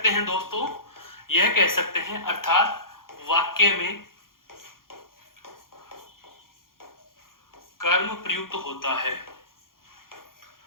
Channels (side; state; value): right; late; 0.91 ms